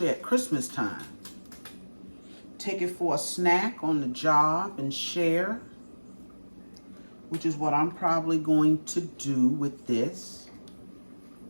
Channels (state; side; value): inverted; both; correlation -1.00